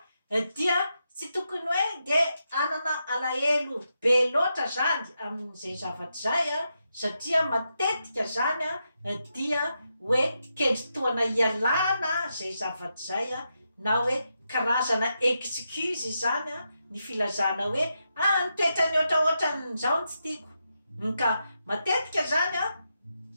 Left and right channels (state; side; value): inverted; both; correlation -0.85